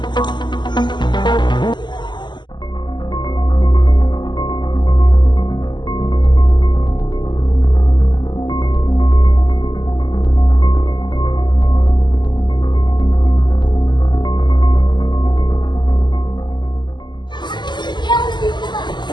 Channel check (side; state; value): right; late; 0.21 ms